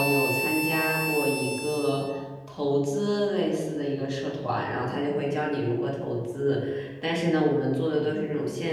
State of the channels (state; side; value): identical; both; correlation 1.00